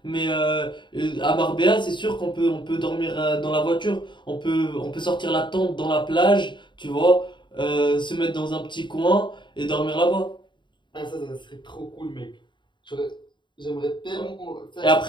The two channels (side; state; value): right; late; 0.23 ms